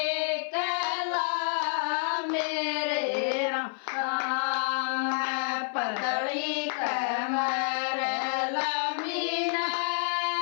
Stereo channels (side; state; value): right; silent; 56 dB below the other